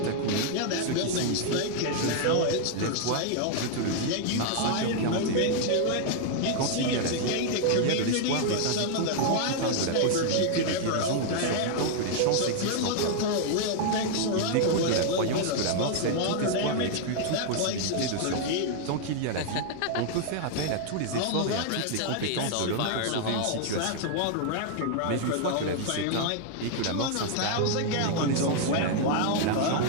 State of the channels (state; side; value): different; both; correlation 0.00